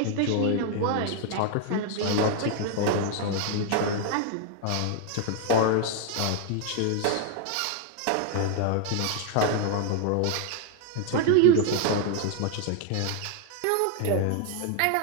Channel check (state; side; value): different; both; correlation 0.01